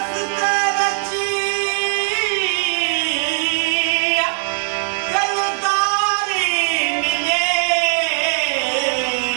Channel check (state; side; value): silent; left; 58 dB below the other